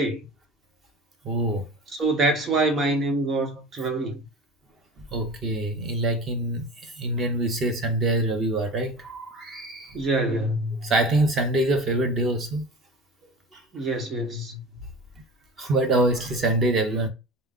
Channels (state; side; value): normal; both; correlation 0.34